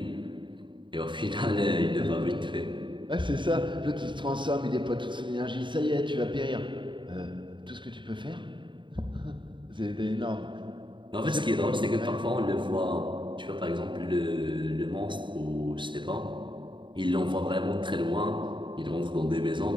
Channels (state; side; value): late; left; 0.23 ms